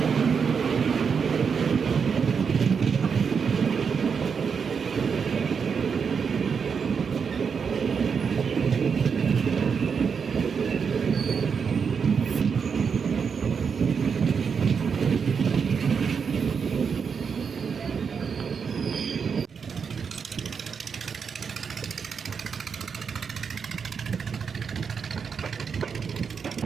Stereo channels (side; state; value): left; quieter; 6.2 dB